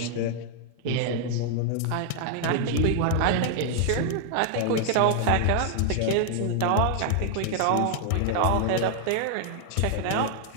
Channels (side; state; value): both; different; correlation 0.00